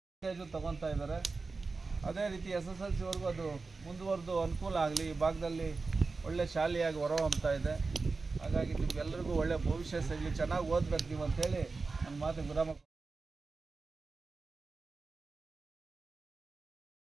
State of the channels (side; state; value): left; quieter; 4.0 dB